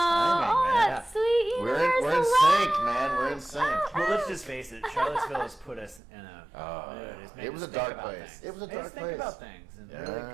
man. that's sweet. We're Where's in the sync, love? man. We're in sync. Well, let's just face it. Charlottesville has put us in a. It's made It was us a think dark about place. things. It was a Made us dark think place. about things and Yeah. really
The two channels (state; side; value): drops out; left; at 6.0 s